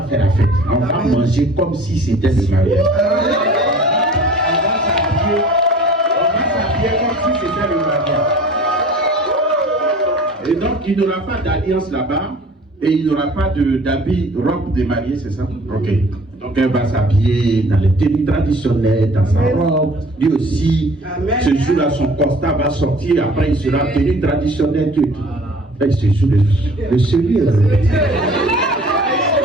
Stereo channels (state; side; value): normal; both; correlation 0.48